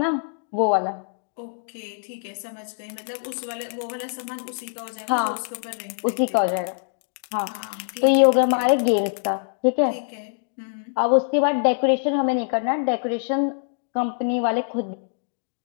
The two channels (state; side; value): silent; right; digital silence